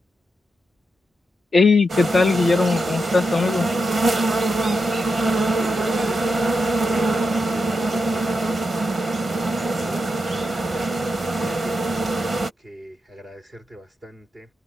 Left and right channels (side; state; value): both; normal; correlation 0.86